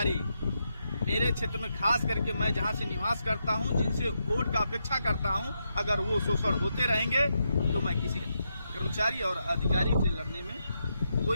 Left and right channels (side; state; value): both; inverted; correlation -0.83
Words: मेरे क्षेत्र में, खास करके मैं जहां से निवास करता हूं, जिनसे वोट का अपेक्षा करता हूं, अगर वो शोषण होते रहेंगे तो मैं किसी कर्मचारी और अधिकारी से लड़ने में